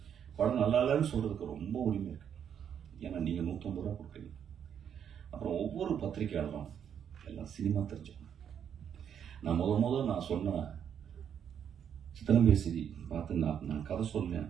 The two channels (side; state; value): left; quieter; 8.5 dB